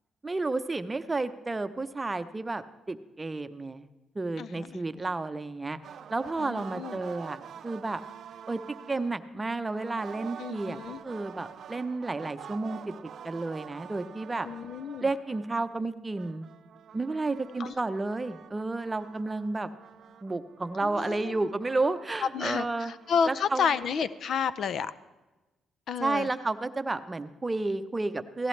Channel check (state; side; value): normal; both; correlation 0.87